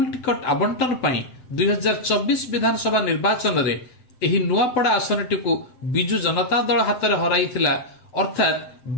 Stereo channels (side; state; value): right; late; 7.7 ms